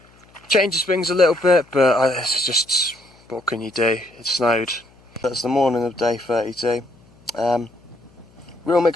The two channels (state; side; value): noise; left; hum, 29 dB below the sound